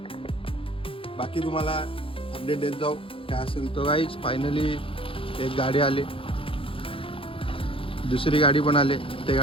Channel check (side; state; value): right; late; 0.26 ms